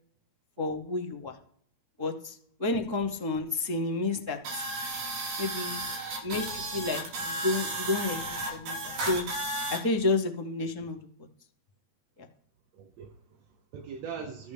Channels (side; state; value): left; late; 8.4 ms